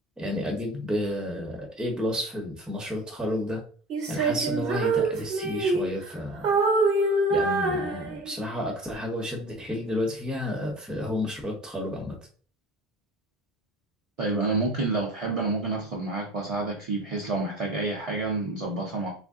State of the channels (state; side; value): normal; both; correlation 0.39